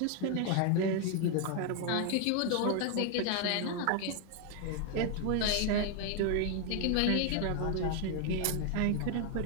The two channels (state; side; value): different; both; correlation 0.01